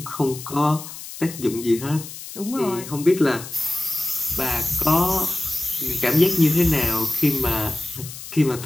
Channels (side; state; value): left; noise; hiss, 12 dB below the sound